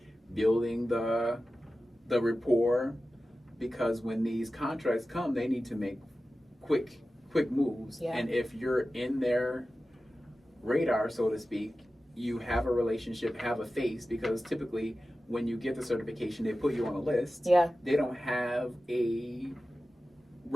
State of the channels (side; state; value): both; normal; correlation 0.94